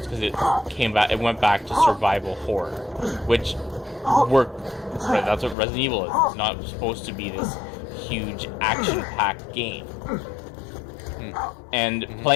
because it went back to survival horror, which worked. Right, that's what Resident Evil is. It's not supposed to be this huge action-packed game. And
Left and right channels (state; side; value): drops out; right; at 5.6 s